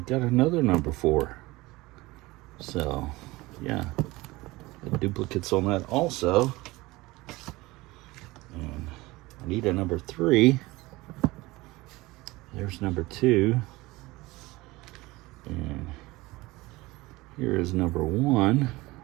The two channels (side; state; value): left; quieter; 20.7 dB